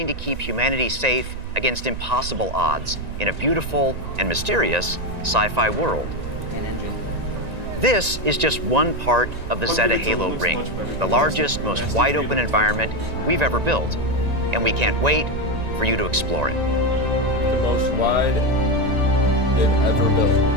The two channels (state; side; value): late; left; 1.9 ms